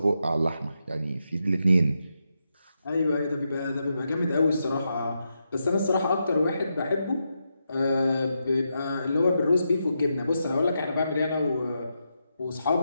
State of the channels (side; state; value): both; inverted; correlation -0.85